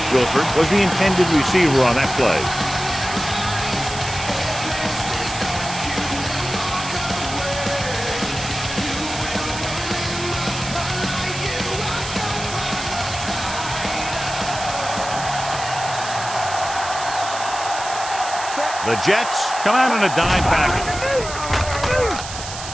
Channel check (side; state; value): right; noise; hiss, 9 dB below the sound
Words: Wilford was the intended receiver on that play. The Jets come out in a dime package.